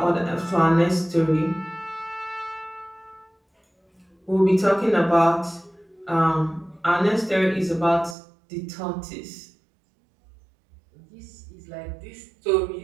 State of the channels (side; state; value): left; drops out; at 8.2 s